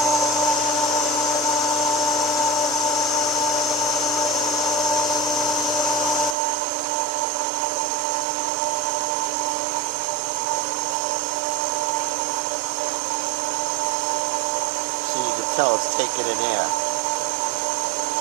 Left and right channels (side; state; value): left; drops out; at 6.4 s